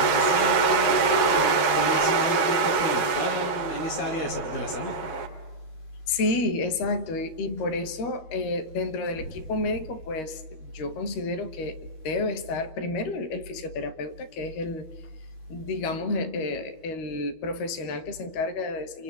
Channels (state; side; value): late; right; 13 ms